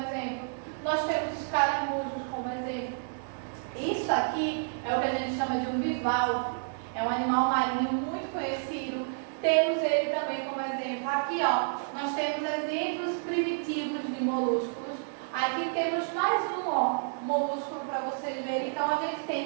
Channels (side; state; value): left; silent; 58 dB below the other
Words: Nós temos os caramujos como exemplo. Isso aqui é o que a gente chama de um bivalve. É um animal marinho muito conhecido. Temos ele também como exemplo. Aqui, ó, nós temos exemplos primitivos de molúsculos. Aqui temos mais um, ó, molúsculo para vocês verem. Então, a gente